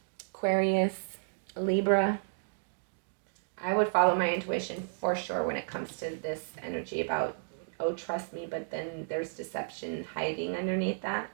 Aquarius, Libra. I would follow my intuition for sure when it comes to this energy about, oh, trust me, but then there's deception hiding underneath that.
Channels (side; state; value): left; silent; digital silence